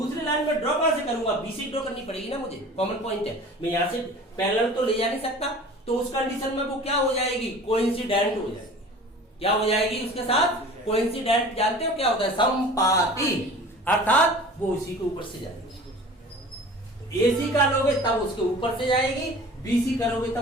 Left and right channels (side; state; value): both; normal; correlation 0.42